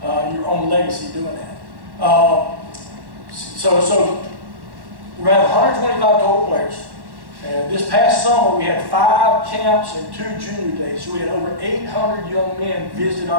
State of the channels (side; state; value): left; late; 1.1 ms